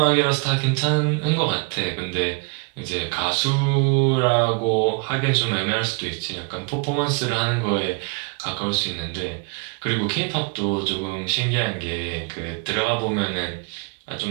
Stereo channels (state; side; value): quieter; left; 32.3 dB